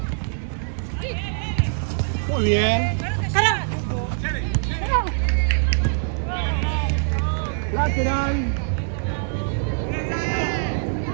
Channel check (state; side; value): silent; left; digital silence